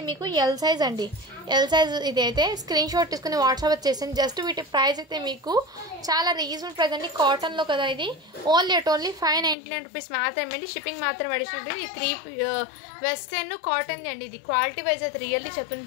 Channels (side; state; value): right; drops out; at 9.6 s